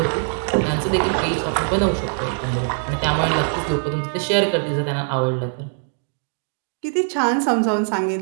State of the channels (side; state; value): left; silent; 63 dB below the other